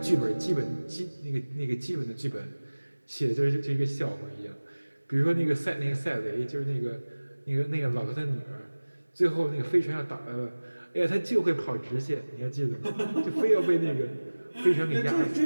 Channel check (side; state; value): both; inverted; correlation -1.00